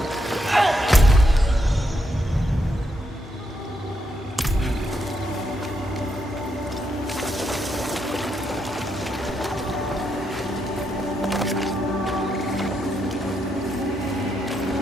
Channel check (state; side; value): normal; both; correlation 0.80